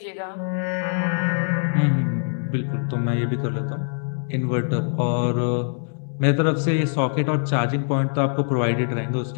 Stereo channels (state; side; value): silent; right; digital silence